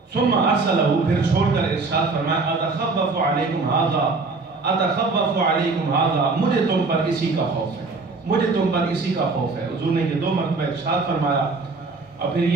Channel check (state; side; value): quieter; left; 3.9 dB